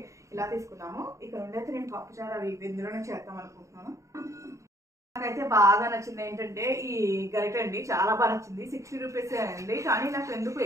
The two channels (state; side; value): late; left; 0.15 ms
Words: ఇలా తీసుకున్నాము. ఇక్కడ ఉండైతే నేను పప్పుచారు అవి ఇందులోనే చేద్దాం అనుకుంటున్నాను. నాకైతే బాగా నచ్చింది ఏంటంటే ఈ గరిట అండి, చాలా బాగా నచ్చింది. 60 రూపీస్ అండి, కానీ నాకు ఎందుకు